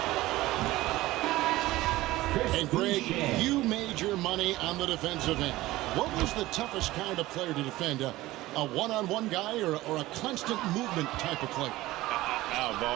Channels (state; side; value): quieter; left; 17.6 dB